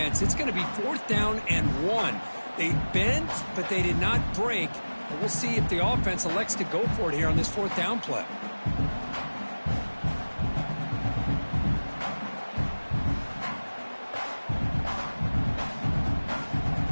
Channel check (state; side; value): inverted; both; correlation -1.00